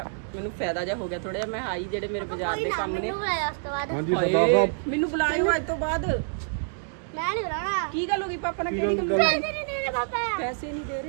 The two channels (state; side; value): silent; left; digital silence